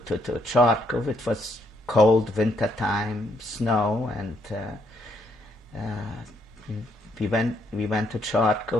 Chartkov. It was cold winter time, snow, and we went to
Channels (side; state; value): both; normal; correlation 0.73